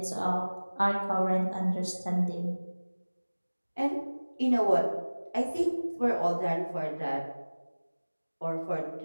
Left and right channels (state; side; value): inverted; both; correlation -1.00